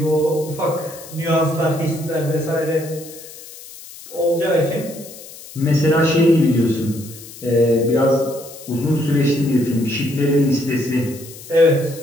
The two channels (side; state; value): left; noise; hiss, 17 dB below the sound